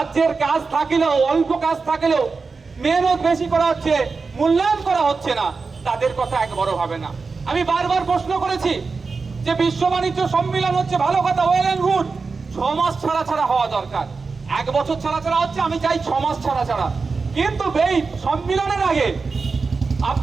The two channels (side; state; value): left; quieter; 4.5 dB